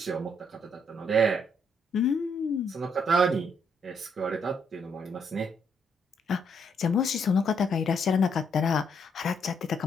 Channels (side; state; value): both; normal; correlation 0.73